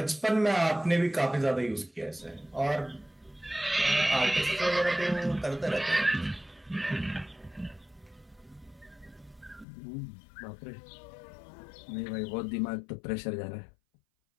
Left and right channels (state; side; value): drops out; right; at 9.7 s